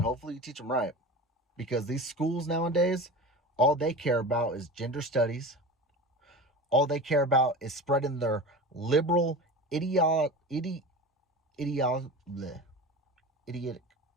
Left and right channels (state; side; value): normal; both; correlation 0.32